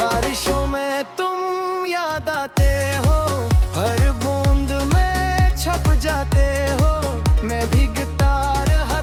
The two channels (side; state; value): both; identical; correlation 1.00